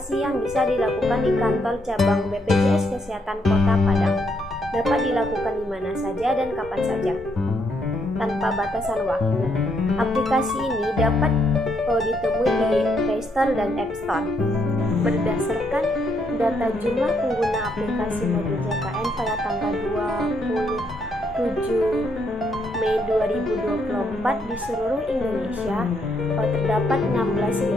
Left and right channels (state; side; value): normal; both; correlation 0.74